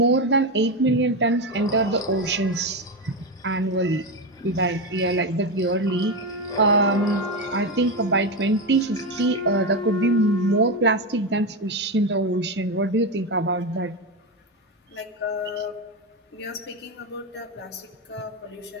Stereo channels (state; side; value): normal; both; correlation 0.13